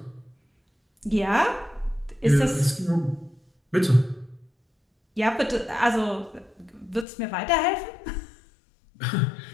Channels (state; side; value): drops out; right; at 7.1 s